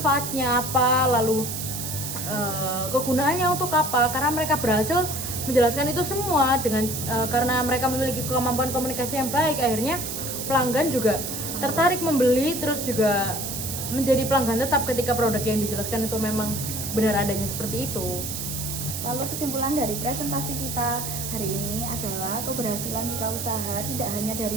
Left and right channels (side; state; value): right; noise; hiss, 5 dB below the sound